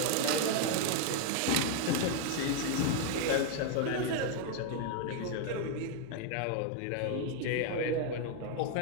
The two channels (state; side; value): different; both; correlation 0.00